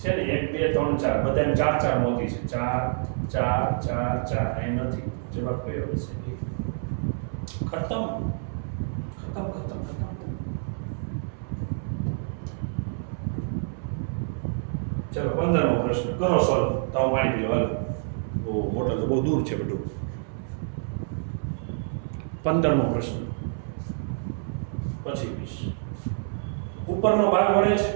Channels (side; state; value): left; silent; 60 dB below the other